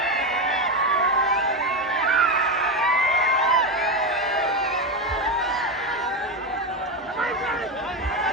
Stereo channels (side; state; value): both; normal; correlation 0.12